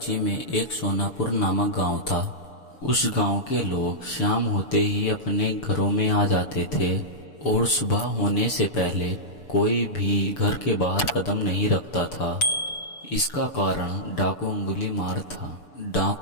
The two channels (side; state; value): right; late; 6.9 ms